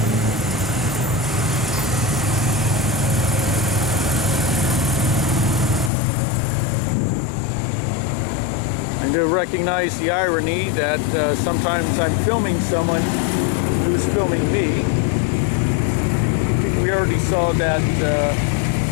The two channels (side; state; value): right; drops out; at 5.9 s